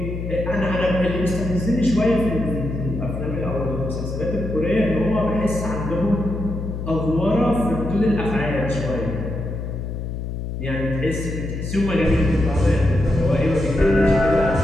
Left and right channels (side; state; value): left; noise; hum, 5 dB below the sound